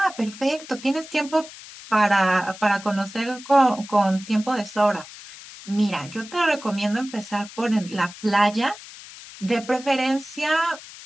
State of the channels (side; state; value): left; noise; hiss, 16 dB below the sound